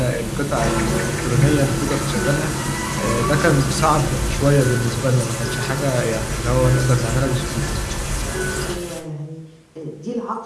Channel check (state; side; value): identical; both; correlation 1.00